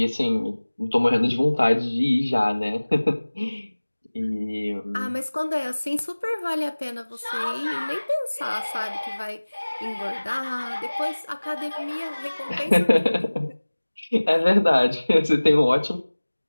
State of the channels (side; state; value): both; inverted; correlation -1.00